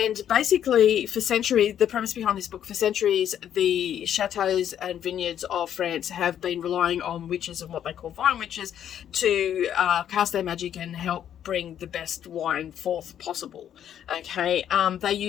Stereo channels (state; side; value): quieter; right; 10.0 dB